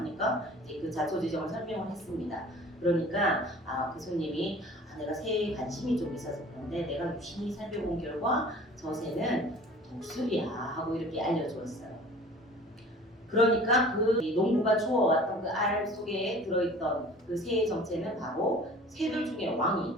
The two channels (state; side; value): normal; both; correlation 0.45